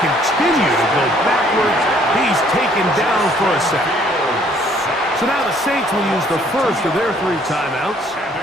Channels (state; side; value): normal; both; correlation 0.61